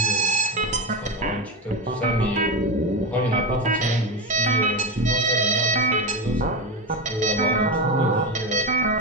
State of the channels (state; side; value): normal; both; correlation 0.17